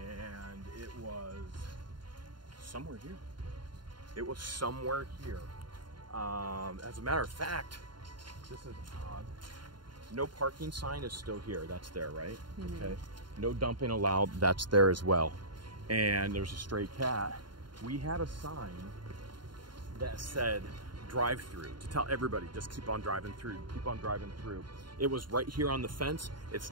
it was somewhere here. It was somewhere here. As a matter of fact, this is odd. No parking sign is still here. That's there, right? Mm-hmm. Okay. No dumping allowed. That's there as well. And there's a stray cat. We had a sign that said drive through to tell everybody just keep on driving through, keep on driving through. It was right here on the fence.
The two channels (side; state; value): left; late; 0.72 ms